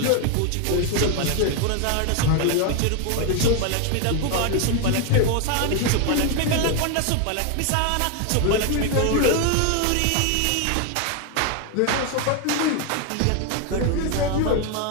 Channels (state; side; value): different; both; correlation 0.01